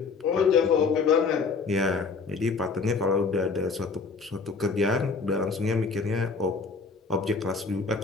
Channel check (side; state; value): right; quieter; 4.6 dB